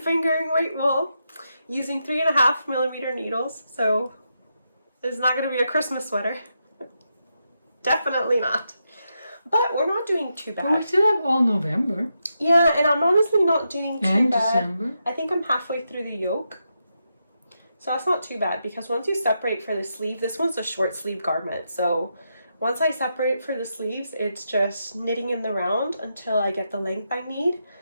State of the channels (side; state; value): both; inverted; correlation -0.84